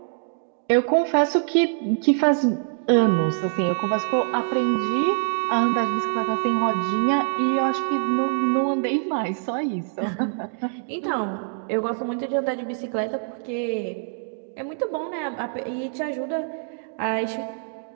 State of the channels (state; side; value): silent; left; digital silence